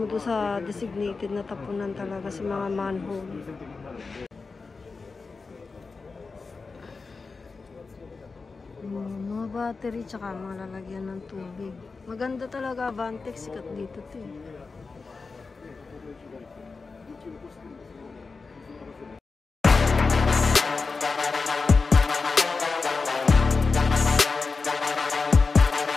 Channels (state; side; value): quieter; right; 4.3 dB